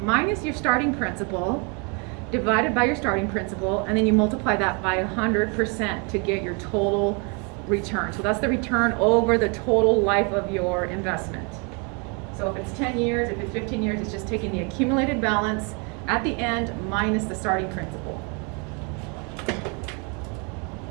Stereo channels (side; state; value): left; quieter; 34.0 dB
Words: minus your starting principal divided by your starting principal, and then you multiply that by 100% to get your total return. So that's the return over the total life of your investment. So if it's 10 years, if it's 15 years, it's just taking the accumulated balance at the end minus the starting principal.